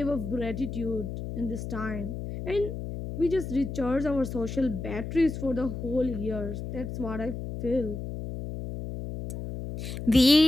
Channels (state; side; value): noise; left; hum, 7 dB below the sound